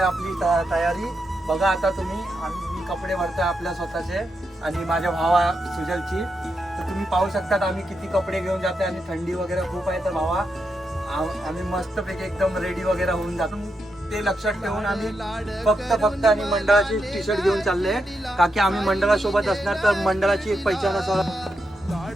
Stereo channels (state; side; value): normal; both; correlation 0.84